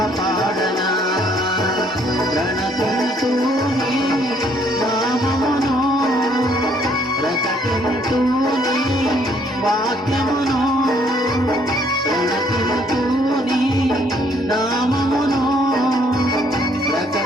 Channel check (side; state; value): both; normal; correlation 0.66